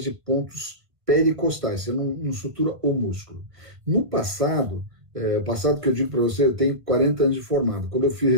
de pontos pericostais, você não sutura o músculo. No passado, passado que eu digo para você, eu tenho 40 anos de formado. Quando eu fiz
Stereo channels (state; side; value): late; left; 1.5 ms